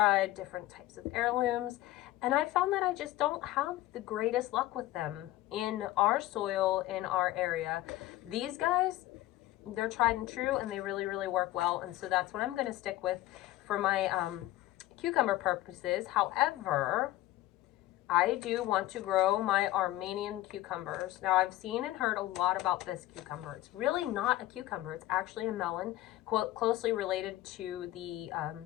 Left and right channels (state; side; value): quieter; right; 16.1 dB